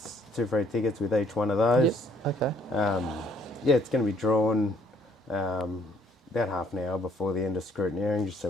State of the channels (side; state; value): both; normal; correlation 0.64